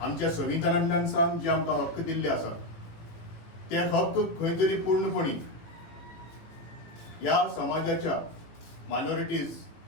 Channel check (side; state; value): right; late; 18 ms